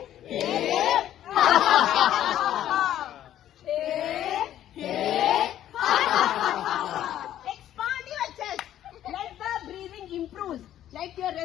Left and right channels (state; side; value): quieter; right; 11.8 dB